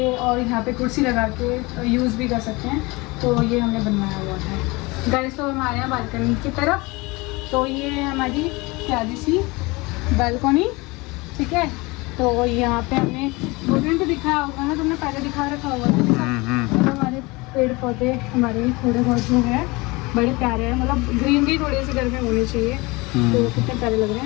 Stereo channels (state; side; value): quieter; right; 24.3 dB